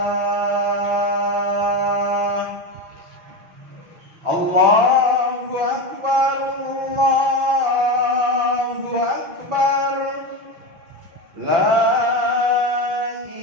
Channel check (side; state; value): left; late; 5.9 ms